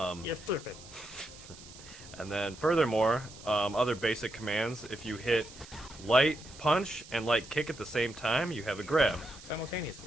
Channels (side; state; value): right; noise; hiss, 18 dB below the sound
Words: stupid. And then furthermore, other basic commands, if you hit light punch and light kick at the same time, you have a grab.